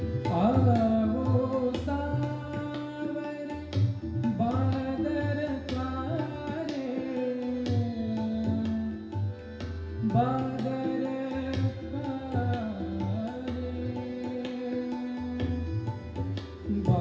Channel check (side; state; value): both; identical; correlation 1.00